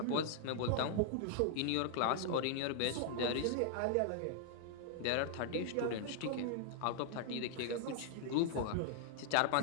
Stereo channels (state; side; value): different; both; correlation -0.01